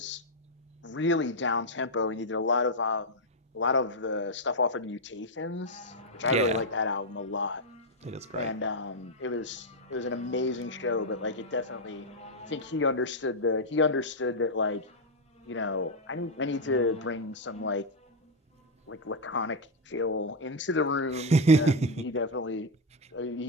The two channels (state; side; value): normal; both; correlation 0.01